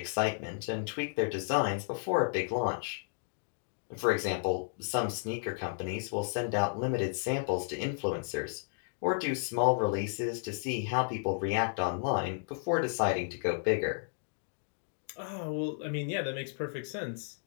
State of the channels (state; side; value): silent; right; digital silence